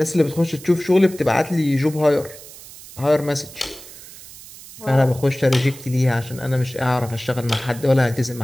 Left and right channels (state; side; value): noise; right; hiss, 17 dB below the sound